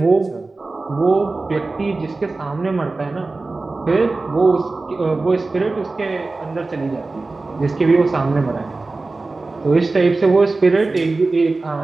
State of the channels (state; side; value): quieter; left; 3.5 dB